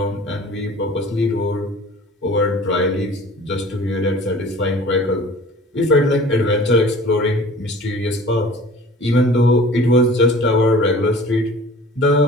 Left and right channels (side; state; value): both; normal; correlation 0.45